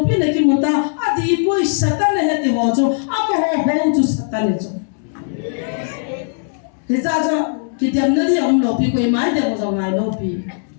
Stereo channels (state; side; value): silent; right; digital silence